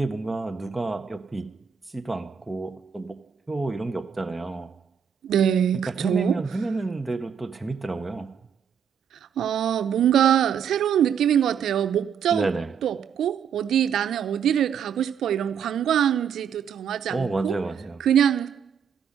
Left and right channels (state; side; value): quieter; left; 7.6 dB